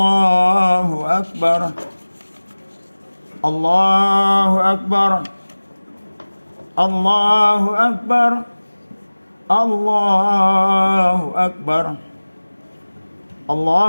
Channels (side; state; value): both; inverted; correlation -1.00